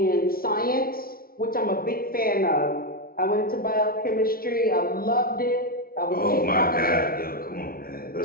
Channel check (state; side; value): late; right; 0.43 ms